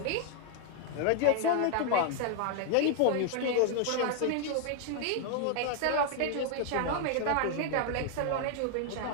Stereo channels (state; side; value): different; both; correlation 0.00